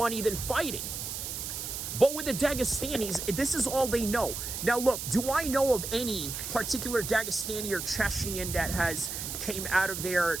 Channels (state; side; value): noise; right; hiss, 5 dB below the sound